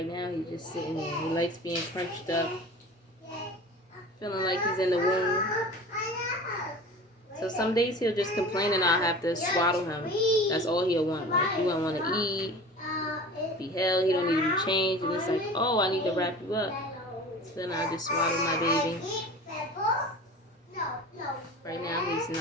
now he's just sitting here. He likes being crunched up. Feeling like he's in the womb. So some days he'll just complain and I'll have to swaddle him. That's all he'll want. Like he won't want to eat, be held, he don't need to be changed. And it's like, oh, I need to wrap you up. So then I just swaddle my baby. Right now he's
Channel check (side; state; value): both; normal; correlation 0.38